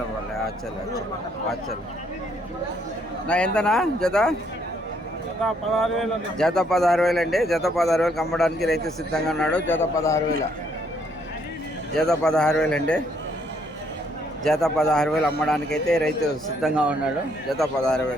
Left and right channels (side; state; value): right; noise; hum, 27 dB below the sound